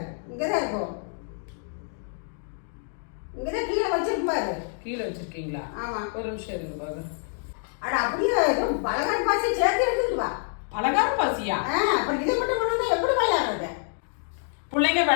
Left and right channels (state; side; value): silent; right; digital silence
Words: இங்கதான் இருக்கும். இங்கதான் கீழே வச்சிருக்கும் பாரு. கீழே வச்சிருக்கீங்களா? ஆமா. ஒரு நிமிஷம் இருங்க பாரு. அட அப்படியே பலகாரம் பாசி சேர்த்து எடுத்துட்டு வா. பலகாரம் பாசியா? அப்புறம் இதை மட்டும் பண்ணா எப்படி விளையாடுறது? பிள்ளைங்க